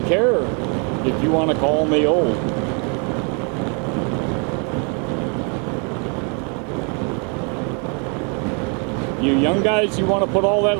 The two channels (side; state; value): left; quieter; 37.1 dB